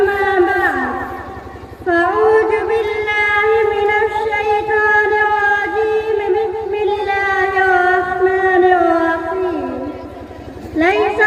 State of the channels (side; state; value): both; identical; correlation 1.00